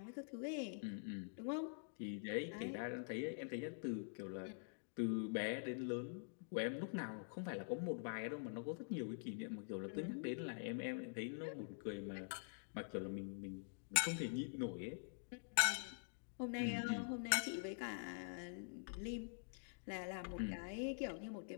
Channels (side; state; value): right; silent; digital silence